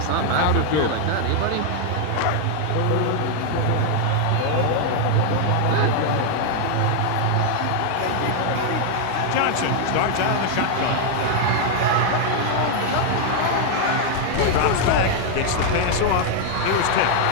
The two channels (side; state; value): both; different; correlation 0.00